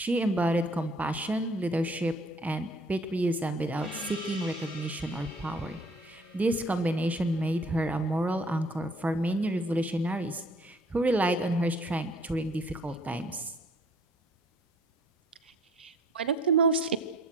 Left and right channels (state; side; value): normal; both; correlation 0.57